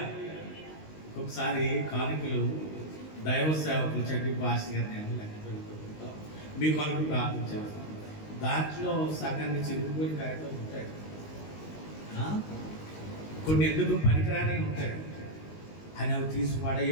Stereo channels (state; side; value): late; right; 19 ms